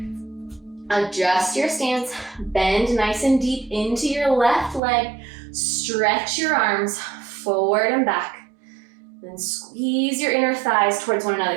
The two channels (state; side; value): drops out; left; at 4.8 s